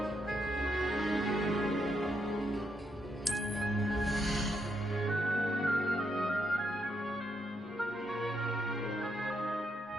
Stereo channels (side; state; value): both; normal; correlation 0.78